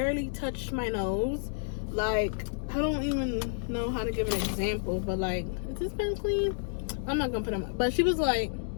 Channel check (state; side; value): silent; right; digital silence